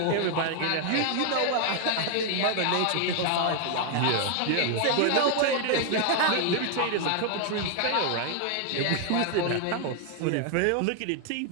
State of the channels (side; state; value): both; different; correlation 0.00